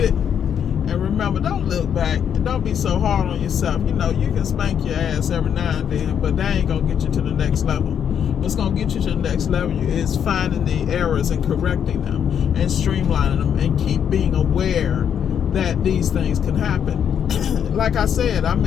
it. And remember, don't look back. And don't be so hard on yourself. You know, you can spank your ass every now and then, but that ain't going to get you to the next level. What's going to get you to the next level is finding the errors and correcting them and streamlining them and keep being aware that these things can happen. Like I said, I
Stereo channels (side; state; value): right; quieter; 8.4 dB